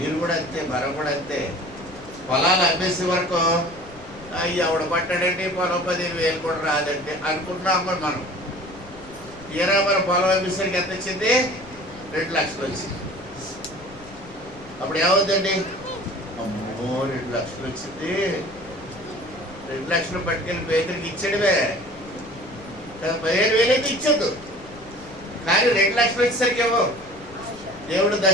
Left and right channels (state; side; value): noise; left; rumble, 20 dB below the sound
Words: కూడా అంతే, మనం కూడా అంతే. పొలాలు అమ్మేసే వరకు ఎవడ పట్టాడంటే పొలం 15,000 కూడా రాదంటే అనుకుంటున్నాం మనం. తీరా మన పొలం అమ్మేసరికి ఎంత వచ్చింది? 2 లక్షలు వచ్చింది. అప్పుడు ఏమవుతుందండి? అమ్మో 2 లక్షలు వచ్చింది. 2 లక్షలు పట్టుకెళ్ళి పేదరికి ఇచ్చాడువే. 15,000 అయితే ఇచ్చొద్దు, కానీ 2 లక్షలు వచ్చేసరికి ఏమో దేవుడు